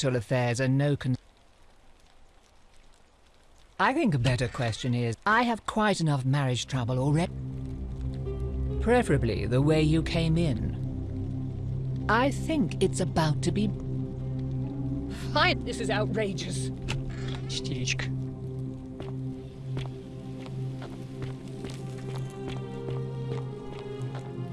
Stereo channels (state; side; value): identical; both; correlation 1.00